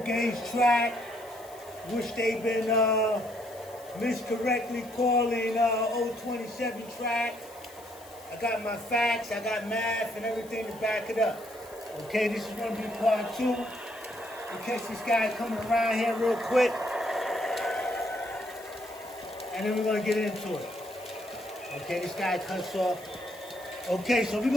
Track, which they've been miscorrectly calling 027 Track. I got my facts, I got math and everything to back it up. Okay, this is going to be part 2. In case this guy coming around here real quick. And then we're going to get into it. Okay, this guy cuts off. Okay, so we're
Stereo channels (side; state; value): left; noise; hiss, 22 dB below the sound